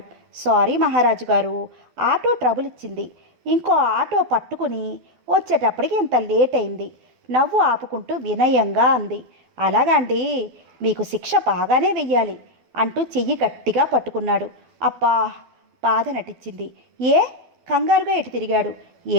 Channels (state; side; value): late; left; 12 ms